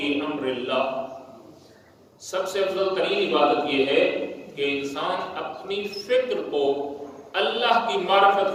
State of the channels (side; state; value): both; identical; correlation 1.00